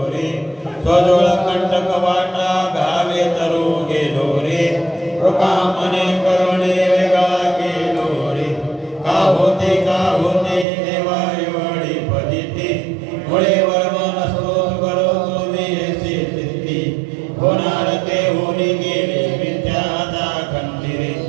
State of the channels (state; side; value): drops out; left; at 10.7 s